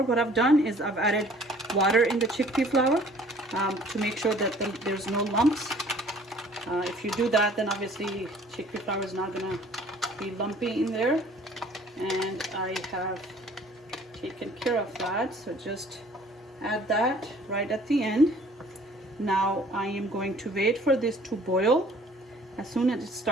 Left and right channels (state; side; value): normal; both; correlation 0.54